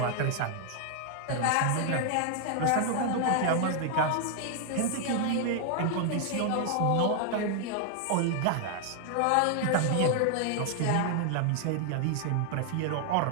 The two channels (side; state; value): both; different; correlation 0.00